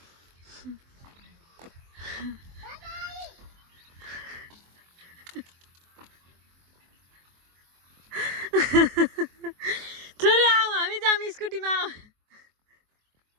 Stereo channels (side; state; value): left; late; 23 ms